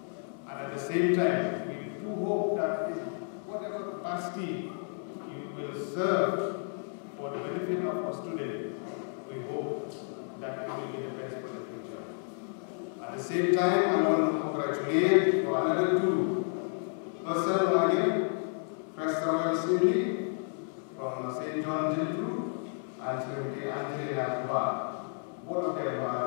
And at the same time, we do hope that in whatever capacity you will serve for the benefit of our students, we hope that you will be the best for the future. At the same time, I want to congratulate for another two persons who are here, Fresh Terwell Assembly from St. John Gentru and Srimati Angelina Thaba. Both of them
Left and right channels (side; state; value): right; silent; 55 dB below the other